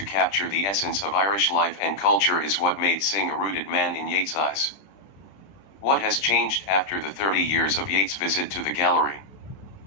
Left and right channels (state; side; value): late; right; 30 ms